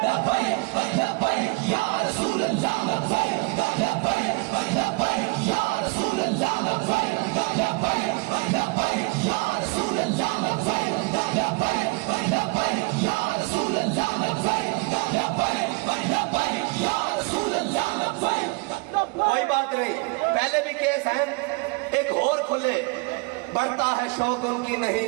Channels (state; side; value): quieter; left; 27.9 dB